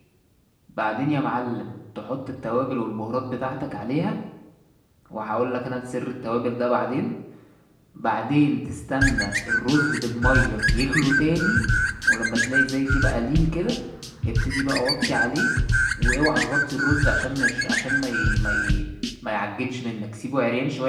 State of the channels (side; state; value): both; identical; correlation 1.00